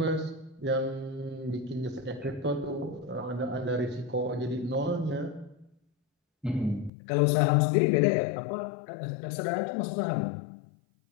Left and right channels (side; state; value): right; drops out; at 6.9 s